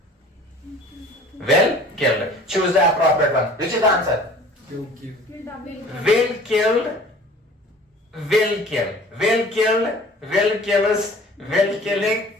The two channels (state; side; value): normal; both; correlation 0.47